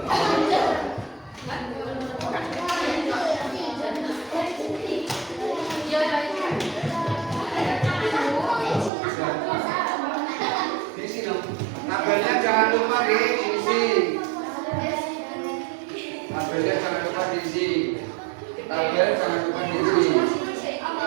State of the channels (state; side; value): drops out; left; at 8.9 s